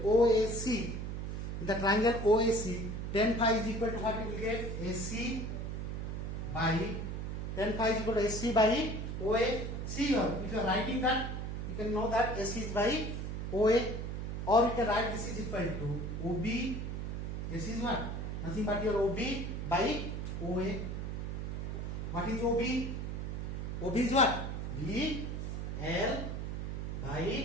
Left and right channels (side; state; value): right; noise; hum, 4 dB below the sound